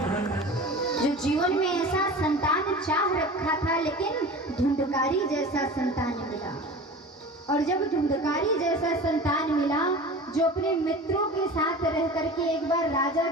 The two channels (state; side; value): normal; both; correlation 0.36